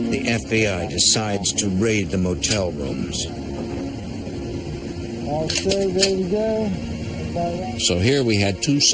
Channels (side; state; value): both; identical; correlation 1.00